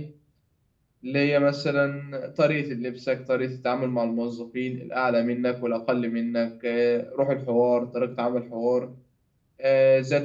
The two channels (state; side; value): identical; both; correlation 1.00